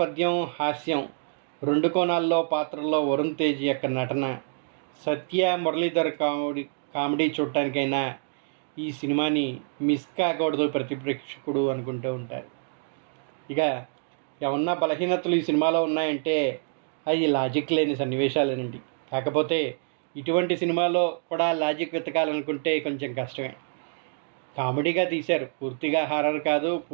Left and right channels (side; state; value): left; silent; digital silence